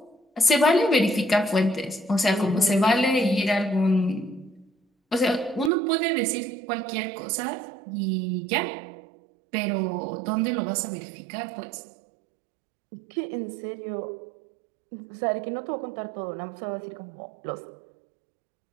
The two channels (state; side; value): drops out; left; at 5.7 s